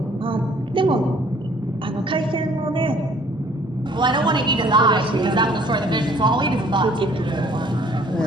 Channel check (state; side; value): normal; both; correlation 0.57